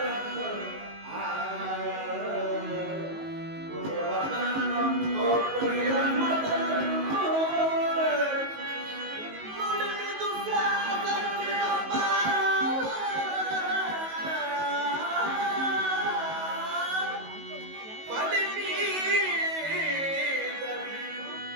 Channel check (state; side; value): late; left; 19 ms